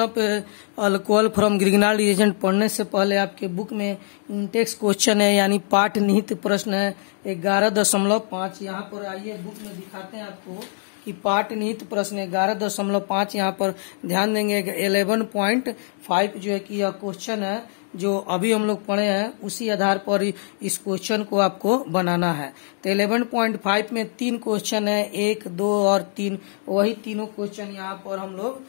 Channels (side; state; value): right; silent; 63 dB below the other